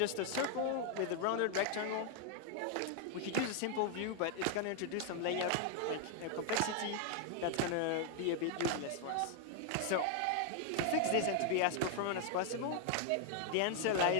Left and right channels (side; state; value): both; different; correlation 0.00